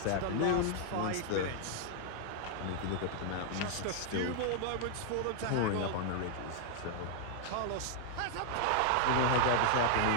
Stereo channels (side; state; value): both; different; correlation 0.00